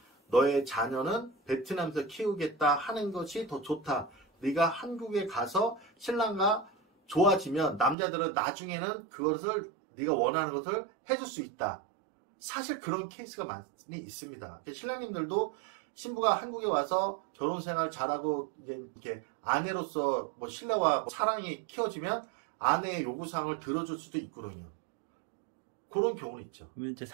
너의 자녀는 베트남에서 키우겠다 하는 것이 더 좋다. 네가 한국에 가서 신랑과 좋아지면 남자들은 나중에는 그것을 네가 원하는 것을 해줄 수 있다. 사실 그런 케이스가 많이 있습니다. 신랑님들도 신부가 한국에 와서 결혼 생활 잘하고 이제 이렇게 아내로서 뭐 신뢰와 뭐 사랑이 키워지면 아내의 요구사항을 들어줄 수도 있거든요. 그런 경우는 있죠. 이제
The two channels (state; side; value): drops out; left; at 8.0 s